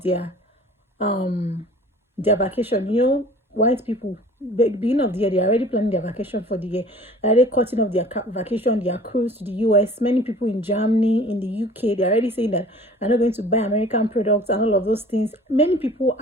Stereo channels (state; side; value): normal; both; correlation 0.47